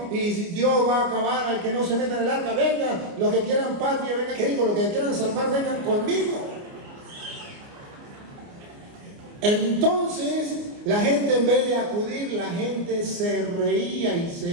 y Dios va a acabar al que no se meta en el arca, vengan, los que quieran patria, vengan, ¿qué digo? Los que quieran salvar, vengan conmigo. Entonces la gente, en vez de acudir, la gente se reía y se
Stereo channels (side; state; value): left; late; 29 ms